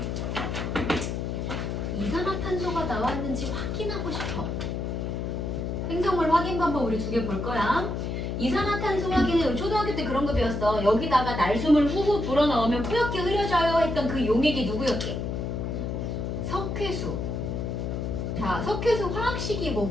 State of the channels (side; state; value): left; noise; hum, 3 dB below the sound